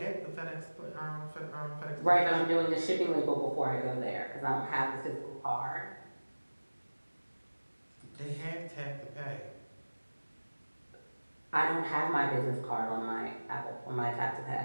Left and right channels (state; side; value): inverted; both; correlation -1.00